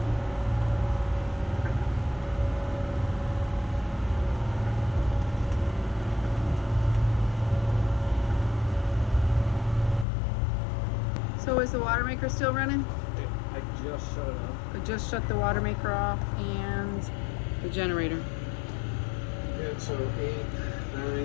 So is the water maker still running? I just shut it off. I just shut the water maker off and the generator. Yeah, so 8,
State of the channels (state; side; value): drops out; right; at 10.1 s